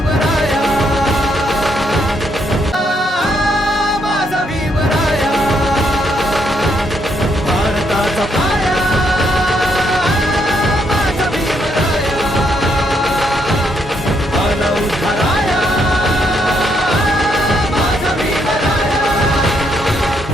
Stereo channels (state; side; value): normal; both; correlation 0.75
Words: माझा भीमराया. भारताचा पाया, माझा भीमराया. आला उद्धाराया, माझा भीमराया.